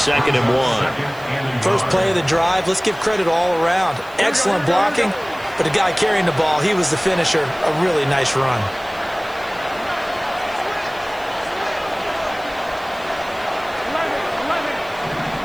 and 1. First play of the drive, let's give credit all around. Excellent blocking, but the guy carrying the ball, he was the finisher. A really nice run.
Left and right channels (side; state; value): right; noise; hiss, 24 dB below the sound